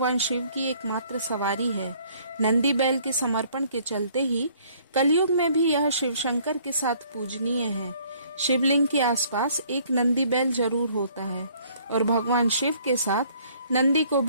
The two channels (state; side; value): inverted; both; correlation -0.60